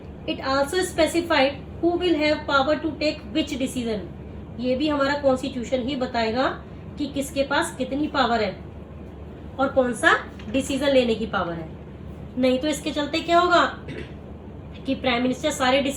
it also specified who will have power to take which decision. ये भी हमारा constitution ही बताएगा कि किसके पास कितनी पावर है और कौन सा डिसीजन लेने की पावर है. नहीं तो इसके चलते क्या होगा कि प्राइम मिनिस्टर सारे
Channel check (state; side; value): identical; both; correlation 1.00